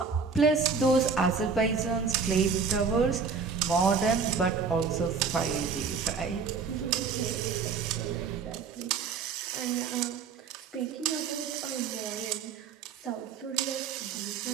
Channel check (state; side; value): quieter; left; 5.5 dB